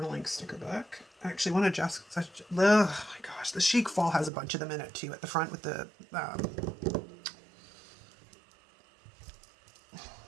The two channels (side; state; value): left; drops out; at 4.3 s